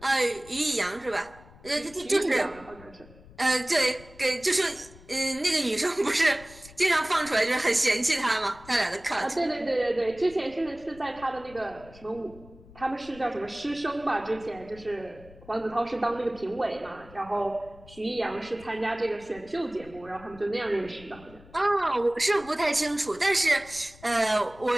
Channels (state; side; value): noise; left; rumble, 21 dB below the sound